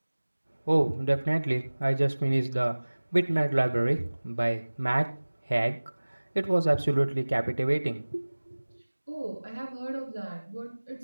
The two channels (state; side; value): inverted; both; correlation -1.00